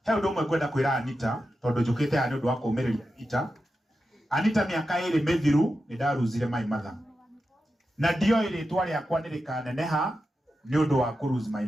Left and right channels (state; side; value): normal; both; correlation 0.90